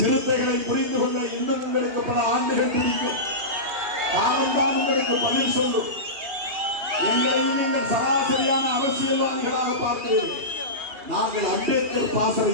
புரிந்து கொள்ள இன்னும் உங்களுக்கு பல ஆண்டுகள் பிடிக்கும். காலம்தான் உங்களுக்கு பதில் சொல்லும். எங்களையும் நீங்கள் சராசரியான அரசியல்வாதிகளாக பார்க்கிறீர்கள். நாங்கள் அம்பேத்கர்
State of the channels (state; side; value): late; left; 3.2 ms